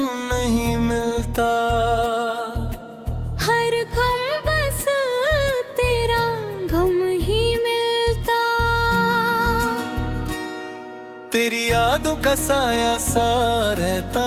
नहीं मिलता। हर गम बस तेरा गम ही मिलता। तेरी यादों का साया सा रहता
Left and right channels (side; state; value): both; identical; correlation 1.00